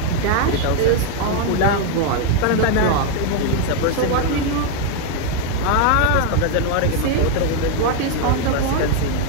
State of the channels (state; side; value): different; both; correlation 0.01